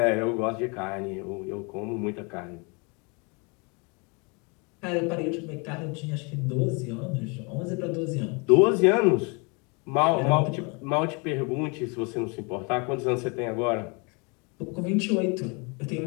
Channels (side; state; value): right; quieter; 31.6 dB